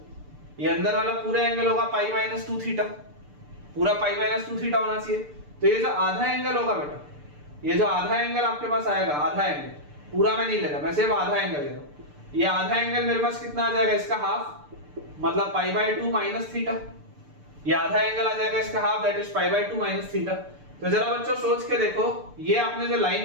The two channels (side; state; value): left; late; 6.8 ms